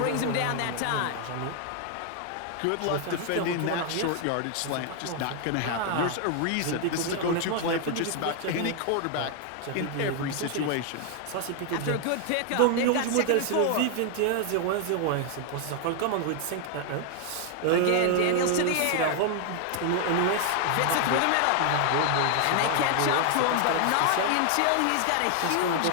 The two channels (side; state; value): both; different; correlation 0.00